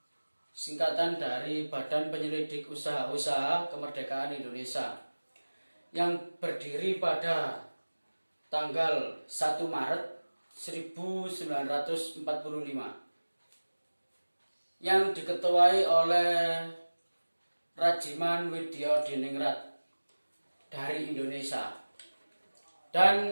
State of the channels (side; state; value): both; inverted; correlation -1.00